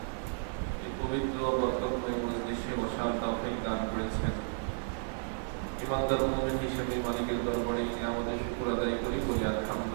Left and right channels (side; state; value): left; silent; digital silence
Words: এই পবিত্র বরকতময় মজলিসে বসার তৌফিক দান করেছেন। ইমানদার মুমিন হিসেবে মালিকের দরবারে আমাদের শুকর আদায় করি